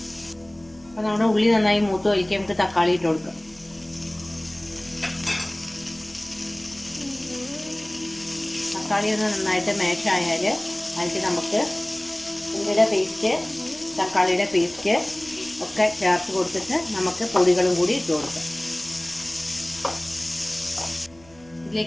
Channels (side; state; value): right; noise; hum, 26 dB below the sound